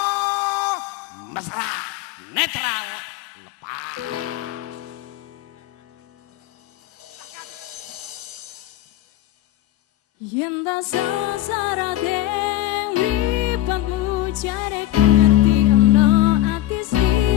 Mesra Netral Lepas. Yen ta sasara deng mripatmu jarek ngerti ana ati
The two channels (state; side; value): quieter; right; 14.2 dB